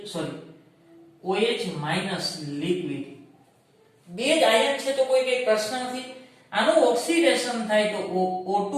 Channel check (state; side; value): identical; both; correlation 1.00